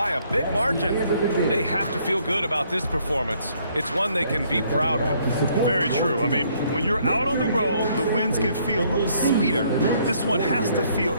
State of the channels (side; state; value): both; inverted; correlation -0.66